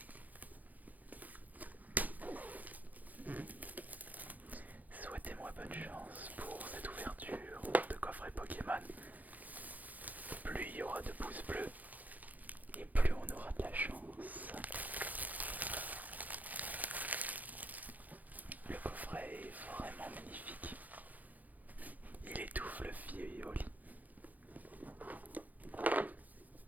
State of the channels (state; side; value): late; left; 0.081 ms